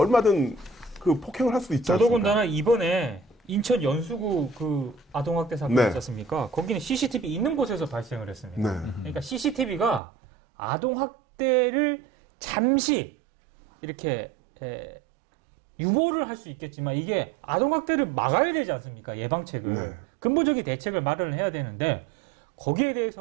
그 폭행을 할 수도 있지 않습니까? 더더군다나 이번에 인천 연수구 그 아동학대 사건 네. 있지 않습니까? 거기는 CCTV 있는 곳에서 발생을 했습니다. 네. 그러니까 CCTV가 아동학대를 잠시 이렇게 유보를 할 수 있겠지만 이게 아동학대를 막아야 되지 않습니까? 예방책을. 네. 근본적인 대책을 마련을 해야 되는데 거기에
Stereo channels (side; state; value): left; drops out; at 10.0 s